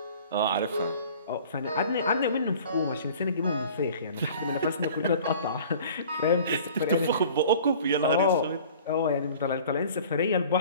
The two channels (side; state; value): both; inverted; correlation -0.46